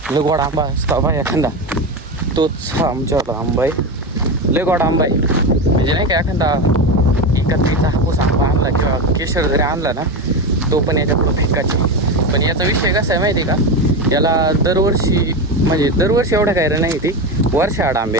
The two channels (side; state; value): both; normal; correlation 0.18